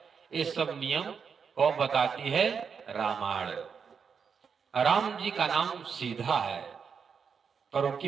ये सब नियम कौन बताती है? रामायण। राम जी का नाम सीधा है पर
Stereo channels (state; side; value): quieter; left; 6.3 dB